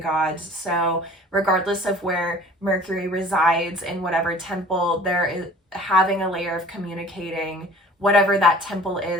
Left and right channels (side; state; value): both; normal; correlation 0.47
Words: So regardless of where Mercury resides in whatever temple, there is having a layer of communicating whatever that temple